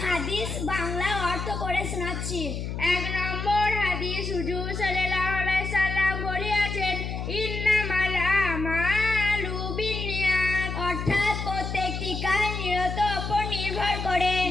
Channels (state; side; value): noise; left; hum, 4 dB below the sound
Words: হাদিস বাংলা অর্থ পড়ে শোনাচ্ছি। 1 নম্বর হাদিস, হুজুর সাল্লাল্লাহু আলাইহি সাল্লাম বলেছেন, ইন্নামাল আমালু বিন্নিয়াত, অর্থাৎ প্রত্যেকটি কাজ নিয়ত উপর নির্ভর করে।